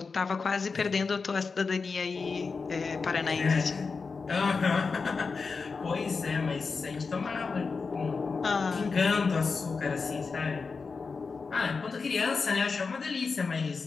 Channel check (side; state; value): right; quieter; 4.7 dB